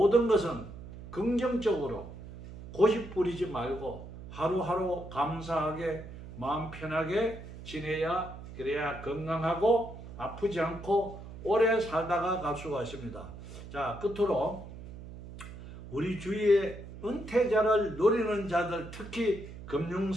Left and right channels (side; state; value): right; noise; hum, 13 dB below the sound